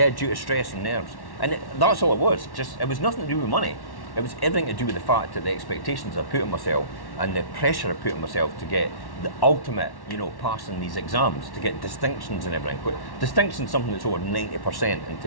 stress and nerves. And that's all it was. It was nothing to do with money. It was everything to do with the fact that the expectations I put on myself and the pressure I put on myself to get the ultimate, passing these exams, to get distinctions and everything. Distinction is something that's over 90% in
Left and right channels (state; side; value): late; right; 1.1 ms